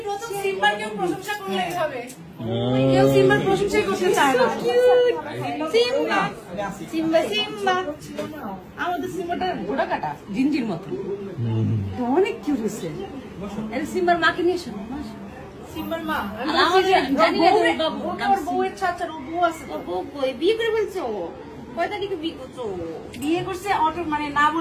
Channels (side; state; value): both; identical; correlation 1.00